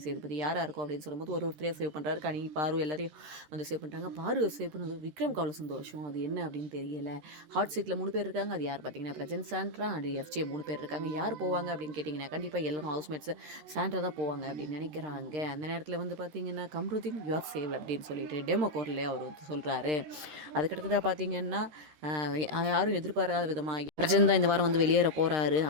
சேதுபதி. யாரா இருக்கும் அப்படின்னு சொல்லும்போது ஒருத்தரையா சேவ் பண்ணுறாரு. கனி, பாரு எல்லாரையும் வந்து சேவ் பண்ணிட்டாங்க. பாரு சேவ் பண்ணது விக்ரம்க்கு அவ்வளோ சந்தோஷம். அது என்ன அப்படின்னு தெரியல. ஹாட் சீட்டில் 3 பேர் இருக்காங்க. அது யார் பார்த்தீங்கன்னா, பிரஜன், சாண்ட்ரா அண்ட் எஃப்ஜே 3 பேர் இருக்காங்க. யார் போவாங்க அப்படின்னு கேட்டிங்கன்னா, கண்டிப்பாக எல்லாரும் ஹவுஸ்மேட்ஸ் சாண்ட்ரா தான் போவாங்க அப்படின்னு நினைக்கிறாங்க. அந்த நேரத்தில் வந்து பார்த்தீங்கன்னா, கம்ருதீன் யூ ஆர் சேவ் அப்படின்னு சொல்லிட்டு டெமோ கோர்லேயே அவர் வந்து சொல்கிறாரு. அதுக்கடுத்ததாக பார்த்தீங்கன்னா, யாரும் எதிர்பாராத விதமாக பிரஜன் தான் இந்த வாரம் வந்து வெளியேற போகிறாரு.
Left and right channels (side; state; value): left; late; 13 ms